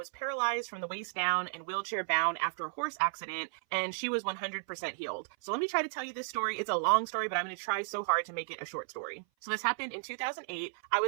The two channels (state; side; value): silent; left; 55 dB below the other